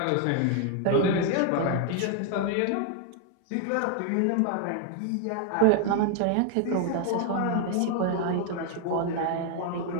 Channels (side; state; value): both; different; correlation 0.00